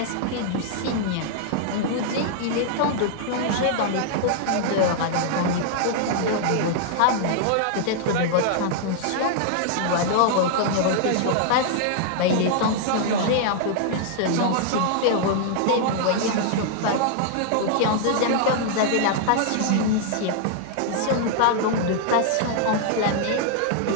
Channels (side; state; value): both; different; correlation -0.01